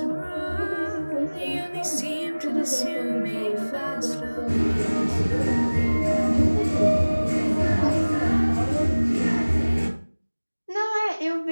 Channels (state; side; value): inverted; both; correlation -1.00